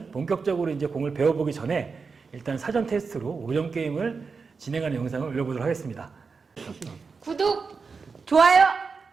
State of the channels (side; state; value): left; quieter; 4.9 dB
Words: 본격적으로 이제 공을 배워보기 전에 일단 사전 테스트로 5점 게임을 진행하는 영상을 올려보도록 하겠습니다. 구독! 좋아요.